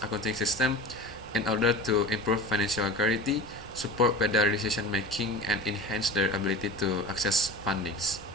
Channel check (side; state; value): both; normal; correlation 0.34